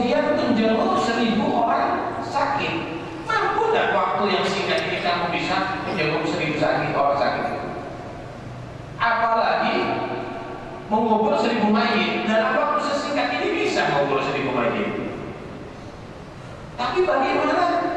menjenguk 1000 orang sakit. Mampu tidak waktu yang singkat ini kamu bisa menjenguk 1000 orang sakit? Apalagi mengubur 1000 mayit. Dalam waktu sesingkat ini bisa mengubur 1000 mayit. Tapi bagaimana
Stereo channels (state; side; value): identical; both; correlation 1.00